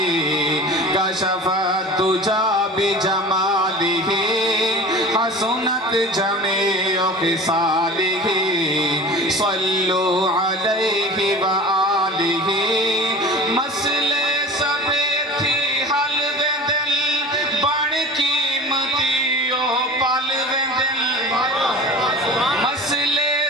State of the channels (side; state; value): both; normal; correlation 0.37